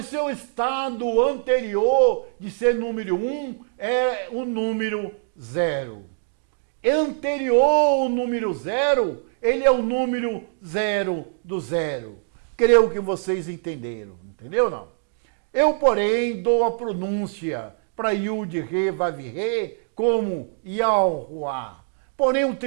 seu estado anterior de ser número 1 é o número 0. Anterior ao número 0, ele é o número 0 do 0. Creio que vocês entenderam, entendeu não? Eu, porém, dou a pronúncia para Yud Rei Vav Rei como Yahuwah. Porém, o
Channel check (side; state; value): left; silent; 62 dB below the other